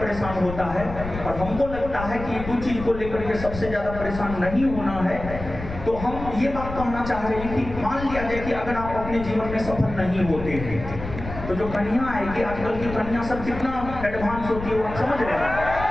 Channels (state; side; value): noise; left; rumble, 9 dB below the sound